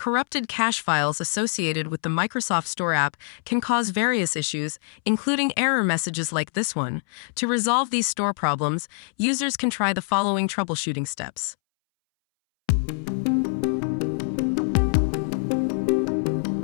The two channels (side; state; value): right; silent; 62 dB below the other